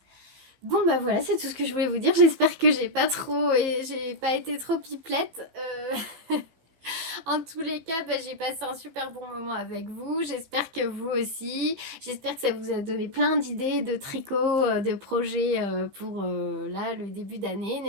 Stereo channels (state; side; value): late; left; 15 ms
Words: Bon voilà, c'est tout ce que je voulais vous dire. J'espère que j'ai pas été trop pipelette. En tous les cas, j'ai passé un super bon moment avec vous. J'espère que vous aussi. J'espère que ça vous a donné plein d'idées de tricot, de projets pour là, le début d'année.